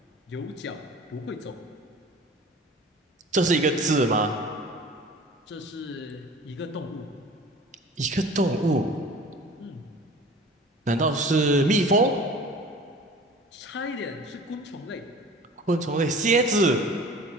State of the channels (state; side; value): normal; both; correlation 0.42